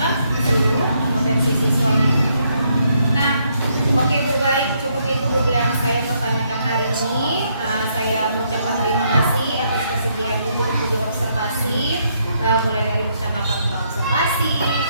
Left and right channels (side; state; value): both; inverted; correlation -0.74